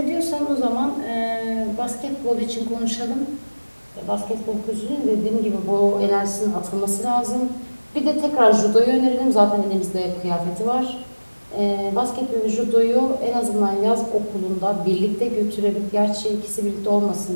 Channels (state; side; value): inverted; both; correlation -1.00